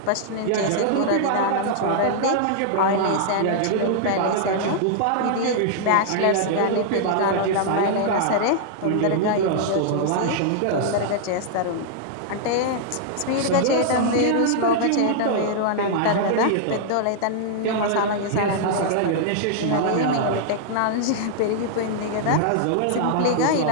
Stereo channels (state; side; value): different; both; correlation -0.01